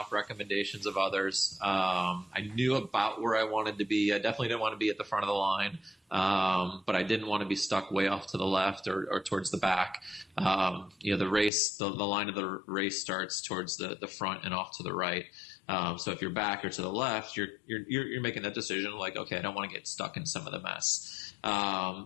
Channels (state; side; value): drops out; right; at 11.5 s